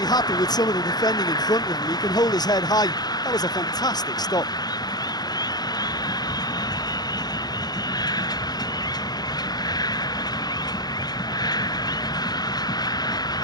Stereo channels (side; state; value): right; late; 0.19 ms